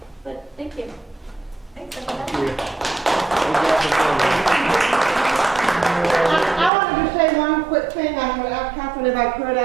but thank you. Thanks, everybody. I wanted to say one quick thing. I would ask Catherine if I could.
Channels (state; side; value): drops out; left; at 6.7 s